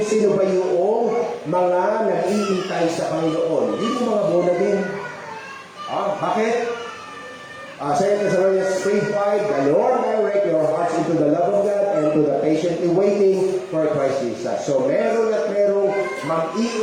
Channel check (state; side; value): identical; both; correlation 1.00